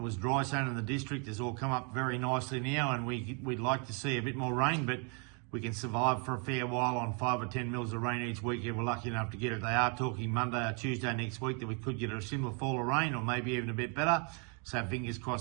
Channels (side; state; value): left; quieter; 36.3 dB